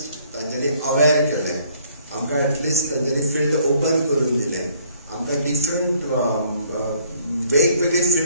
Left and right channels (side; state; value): both; inverted; correlation -0.62